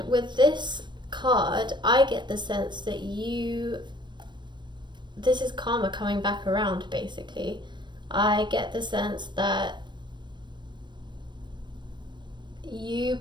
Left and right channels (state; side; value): late; left; 0.22 ms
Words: with this card I get the sense that this is karma coming back around basically. I get the sense that you